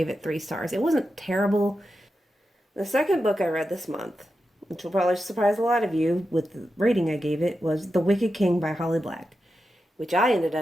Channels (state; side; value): normal; both; correlation 0.89